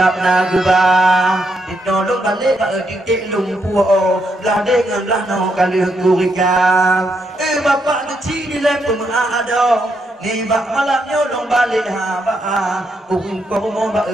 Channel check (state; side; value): normal; both; correlation 0.79